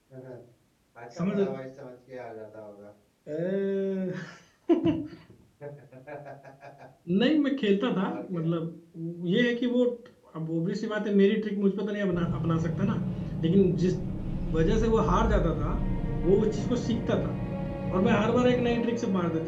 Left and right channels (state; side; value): identical; both; correlation 1.00